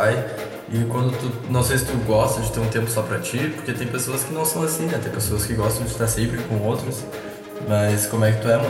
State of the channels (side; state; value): both; identical; correlation 1.00